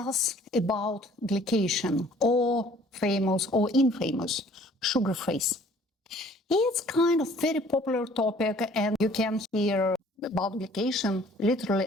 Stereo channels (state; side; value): normal; both; correlation 0.55